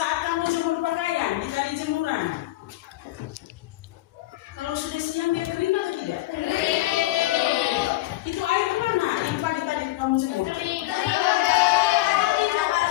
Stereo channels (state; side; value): quieter; right; 17.5 dB